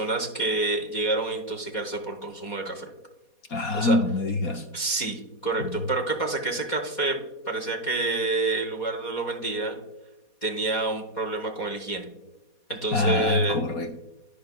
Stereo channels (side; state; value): right; late; 4.2 ms